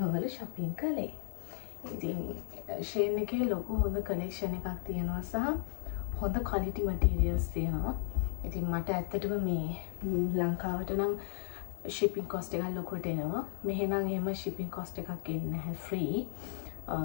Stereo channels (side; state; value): right; silent; digital silence